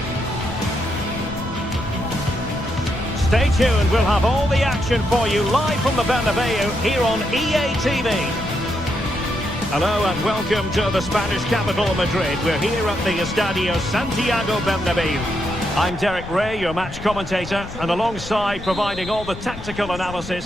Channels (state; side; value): noise; left; rumble, 12 dB below the sound